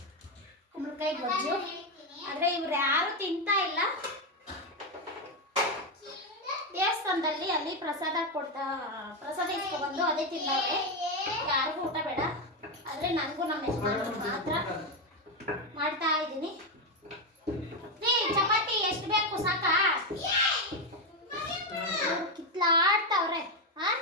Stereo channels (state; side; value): normal; both; correlation 0.08